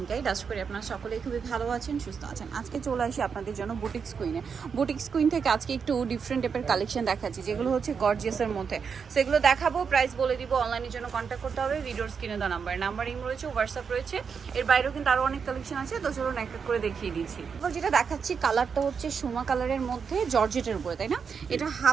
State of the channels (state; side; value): quieter; left; 6.2 dB